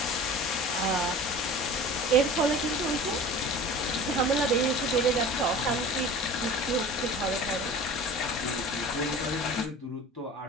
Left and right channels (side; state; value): both; normal; correlation 0.40